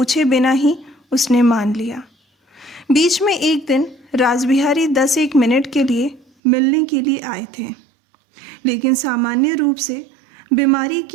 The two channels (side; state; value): left; drops out; at 6.2 s